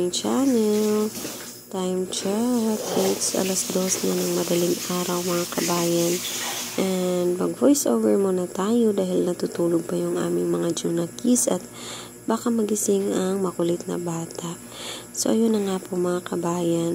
channel. Time check. It's alas 2 na ng madaling araw mga kabayan. And mag voice over muna tayo dahil natutulog pa yung aming mga junakis at baka magising ang makulit na bata. So ayun na nga po mga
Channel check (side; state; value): both; identical; correlation 1.00